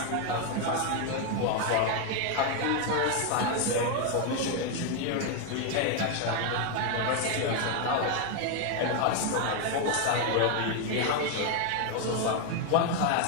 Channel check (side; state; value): both; different; correlation 0.01